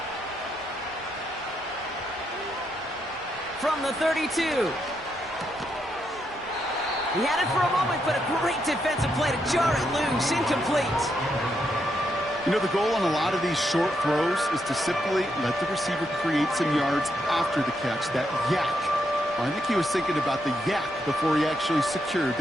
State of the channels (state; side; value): normal; both; correlation 0.79